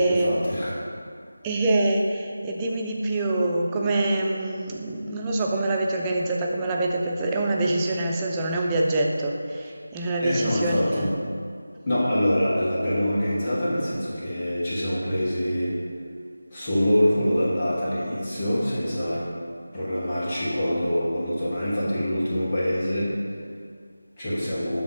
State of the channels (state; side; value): inverted; both; correlation -0.91